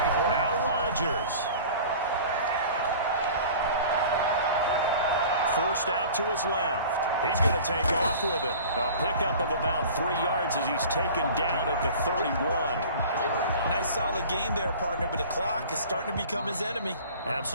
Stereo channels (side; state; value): both; inverted; correlation -0.42